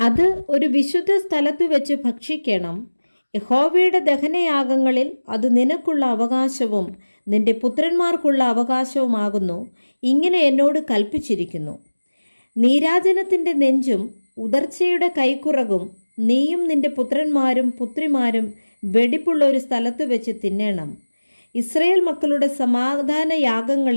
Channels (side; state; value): both; inverted; correlation -1.00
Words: അത് ഒരു വിശുദ്ധ സ്ഥലത്ത് വെച്ച് ഭക്ഷിക്കണം. യഹോവയുടെ ദഹനയാഗങ്ങളിൽ അത് നിനക്കുള്ള അവകാശവും നിന്റെ പുത്രന്മാർക്കുള്ള അവകാശവുമാകുന്നു. ഇങ്ങനെ എന്നോട് കൽപ്പിച്ചിരിക്കുന്നു. നീരാജനത്തിൻ്റെ നെഞ്ചും ഉദർച്ചയുടെ കൈക്കുറകും നീയും നിന്റെ പുത്രന്മാരും പുത്രിമാരും വെടിപ്പുള്ള ഒരു സ്ഥലത്ത് വെച്ച് തിന്നണം. ഇസ്രയേൽ മക്കളുടെ സമാധാന